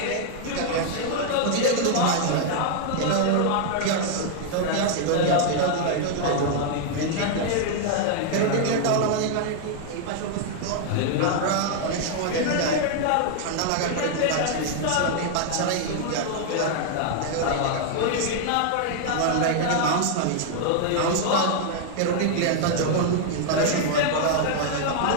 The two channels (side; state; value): both; different; correlation 0.00